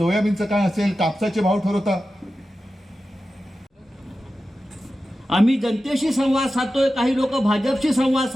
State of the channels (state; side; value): normal; both; correlation 0.93